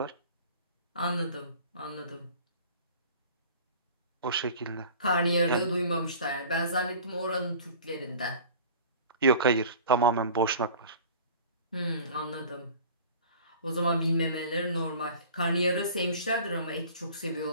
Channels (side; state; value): both; inverted; correlation -0.44